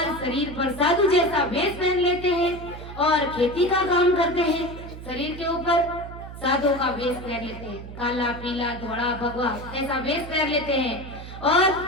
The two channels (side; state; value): right; noise; hum, 12 dB below the sound